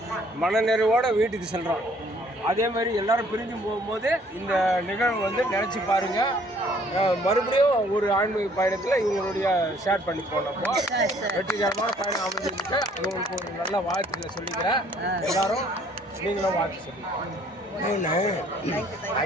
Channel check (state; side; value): normal; both; correlation 0.60